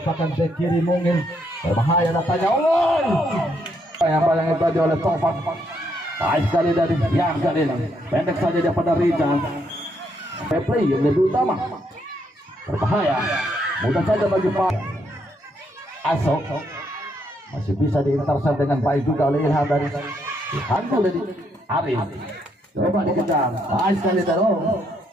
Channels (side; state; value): both; normal; correlation 0.75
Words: bek kiri mungkin berbahaya datanya. Bayang-bayang itu tadi oleh Tovan. Baik sekali dari yang kali ini, pendek saja dia pada Rizal. Play yang lebih utama, berbahaya, mudah saja bagi Pak Asok. Masih bisa diintersep dengan baik juga oleh Ilham dari dihantu dari Arif. Coba dikejar, baik sekali dari